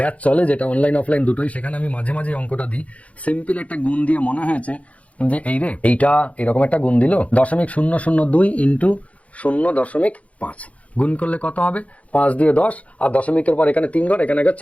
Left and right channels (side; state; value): right; late; 0.066 ms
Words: চলে, যেটা অনলাইন অফলাইন দুটোই, সেখানে আমি মাঝে মাঝে অঙ্কটা দিই। সিম্পল একটা গুণ দিয়ে মনে হয়েছে যে এইটা এরকম একটা গুণ দিল, 0.002 ইন্টু 0.5 গুণ করলে কত হবে, 5 দিয়ে 10, আর দশমিকের পর এখানে 3 ঘর, এখানে